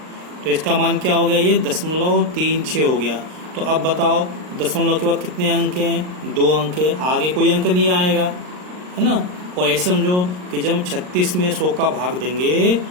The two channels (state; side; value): late; left; 39 ms